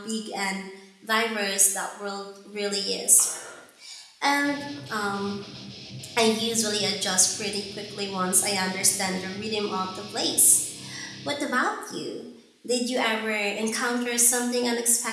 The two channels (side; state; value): both; identical; correlation 1.00